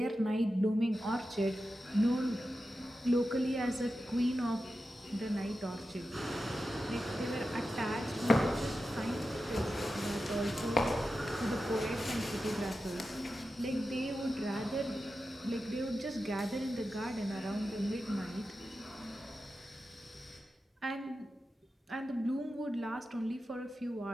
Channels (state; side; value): normal; both; correlation 0.91